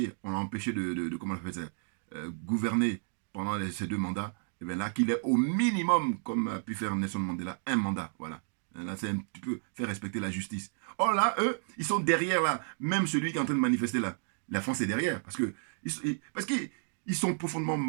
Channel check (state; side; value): silent; left; 57 dB below the other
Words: de comment on appelle ça, gouverner pendant ces 2 mandats, et bien là, qu'il ait au minimum, comme a pu faire Nelson Mandela, un mandat. Voilà. Là, c'est un petit peu faire respecter la justice. Or là, eux, ils sont derrière, là. Même celui qui est en train de manifester, là. La France est derrière. Parce qu'ils sont profondément